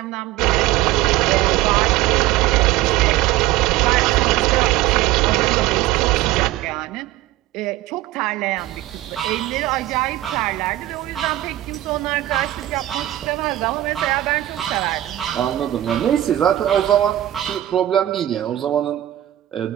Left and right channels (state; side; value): quieter; left; 14.6 dB